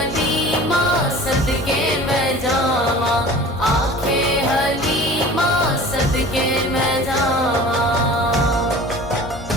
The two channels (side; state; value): both; normal; correlation 0.42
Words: सदके मैं जावा, आखे हलीमा सदके मैं जावा।